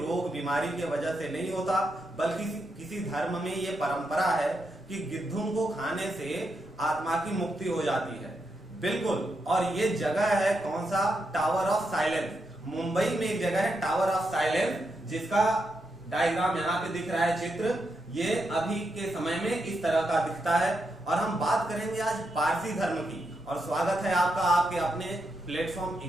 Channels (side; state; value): both; normal; correlation 0.83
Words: बीमारी की वजह से नहीं होता, बल्कि किसी धर्म में ये परंपरा है कि गिद्धों को खाने से आत्मा की मुक्ति हो जाती है। बिल्कुल। और ये जगह है कौन सा? Tower of silence. मुंबई में एक जगह है टावर ऑफ साइलेंस, जिसका डायग्राम यहाँ पे दिख रहा है, चित्र। ये अभी के समय में इस तरह का दिखता है। और हम बात करेंगे आज पारसी धर्म की। और स्वागत है आपका आपके अपने प्लेटफॉर्म